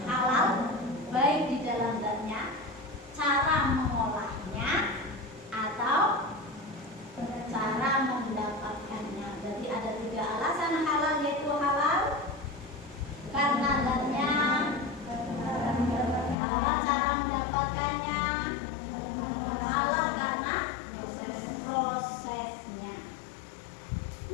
halal, baik di dalam zatnya, cara mengolahnya, atau cara mendapatkannya. Jadi ada 3 alasan halal, yaitu halal karena zatnya, halal cara mendapatkannya, halal karena prosesnya.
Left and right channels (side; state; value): right; drops out; at 16.4 s